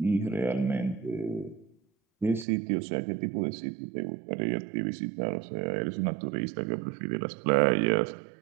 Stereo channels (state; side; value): drops out; left; at 2.5 s